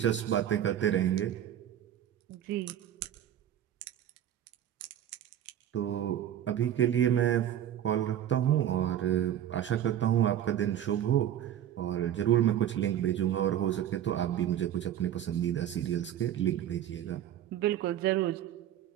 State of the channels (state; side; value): quieter; left; 11.0 dB